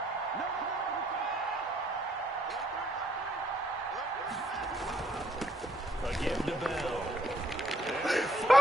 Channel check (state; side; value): normal; both; correlation 0.67